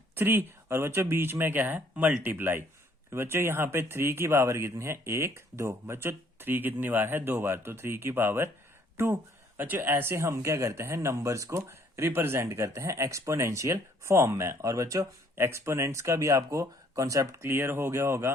3, और बच्चों बीच में क्या है मल्टीप्लाई। तो बच्चों यहाँ पे 3 की पावर कितनी है 1 2, बच्चों 3 कितनी बार है 2 बार, तो 3 की पावर 2। बच्चों ऐसे हम क्या करते हैं नंबर्स को रिप्रेजेंट करते हैं एक्सपोनेंशियल फॉर्म में। और बच्चों एक्सपोनेंट्स का भी आपको कॉन्सेप्ट क्लियर हो गया होगा।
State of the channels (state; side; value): normal; both; correlation 0.63